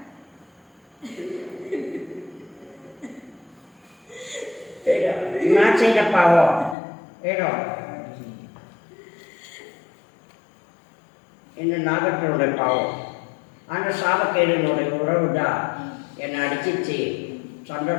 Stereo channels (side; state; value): right; drops out; at 6.8 s